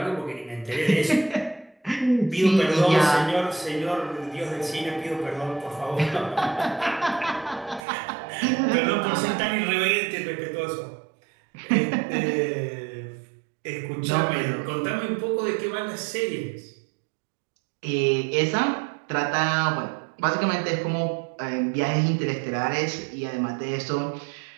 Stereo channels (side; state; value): left; drops out; at 7.9 s